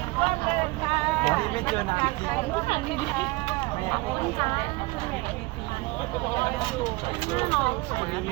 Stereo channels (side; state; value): left; quieter; 22.6 dB